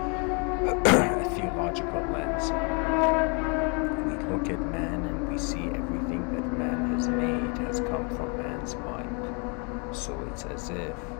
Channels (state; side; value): quieter; right; 35.1 dB